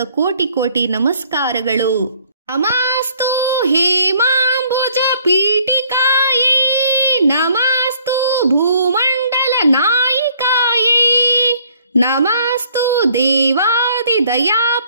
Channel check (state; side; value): inverted; both; correlation -0.61